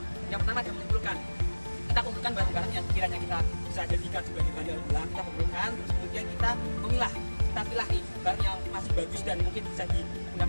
yang pertama adalah mengumpulkan. Kita kumpulkan barang-barang yang kiranya kita bisa jadikan sebagai bahan daur ulang, kita kumpulkan, terus kemudian kita memilah, kita pilih nih barang yang masih bagus dan mungkin bisa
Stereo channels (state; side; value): inverted; both; correlation -1.00